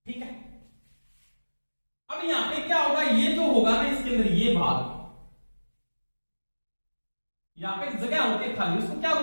ठीक है। अब यहां पे क्या होगा, ये जो होगा ना इसके अंदर ये भाग, यहां पे जगह होती है खाली, उसको क्या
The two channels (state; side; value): inverted; both; correlation -1.00